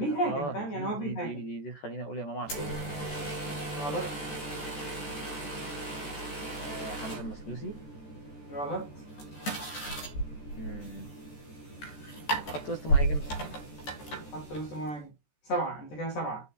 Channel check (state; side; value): late; right; 14 ms